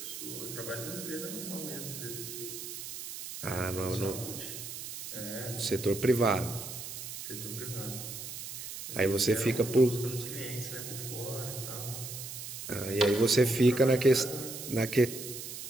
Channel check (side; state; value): right; noise; hiss, 9 dB below the sound